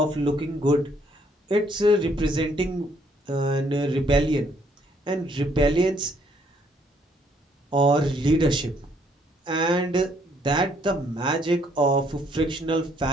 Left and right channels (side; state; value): both; normal; correlation 0.67